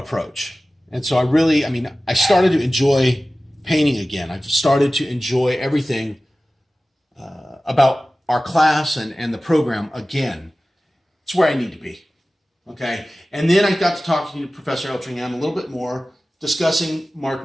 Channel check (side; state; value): both; normal; correlation 0.96